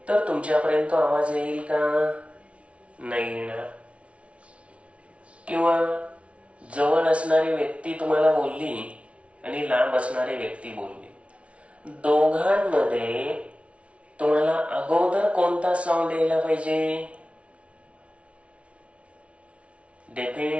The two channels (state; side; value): late; left; 0.062 ms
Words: तर तुमच्यापर्यंत आवाज येईल का? नाही येणार. किंवा जवळ असणारी व्यक्ती तुम्हाला बोलली आणि लांब असणारी व्यक्ती बोलली, दोघांमध्ये तुम्हाला अगोदर कोणता साऊंड यायला पाहिजे?